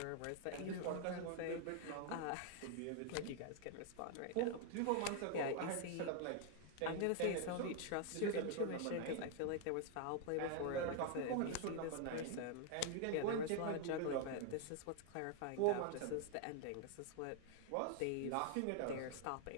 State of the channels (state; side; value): different; both; correlation 0.00